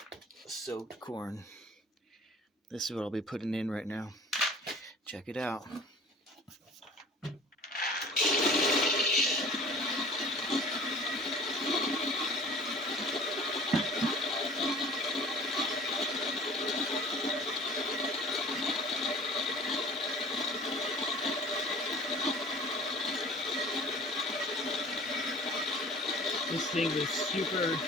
soaked corn. This is what I'll be putting in right now. Check it out. This thing was super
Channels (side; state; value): both; normal; correlation 0.46